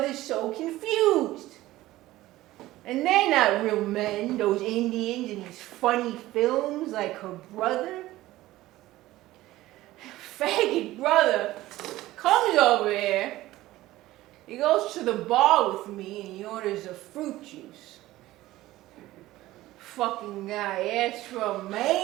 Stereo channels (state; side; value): quieter; left; 16.6 dB